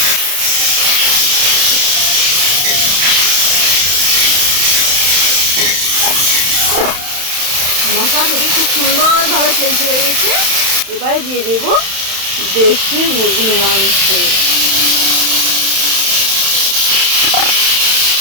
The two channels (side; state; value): left; late; 31 ms